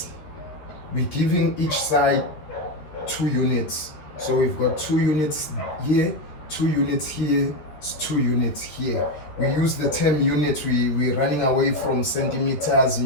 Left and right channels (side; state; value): right; late; 13 ms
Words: we're giving each side 2 units. So we've got 2 units here, 2 units here, 2 units here. We use the term units. We're running away from centimeters,